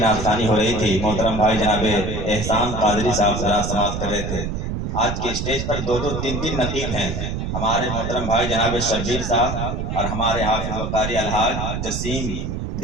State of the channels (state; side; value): noise; right; rumble, 3 dB below the sound